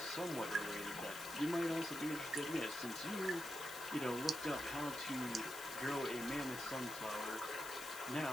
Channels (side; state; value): left; noise; hiss, 11 dB below the sound